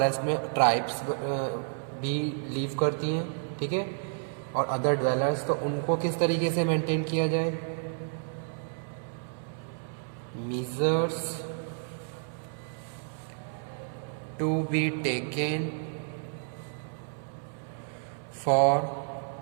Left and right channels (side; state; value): left; silent; 57 dB below the other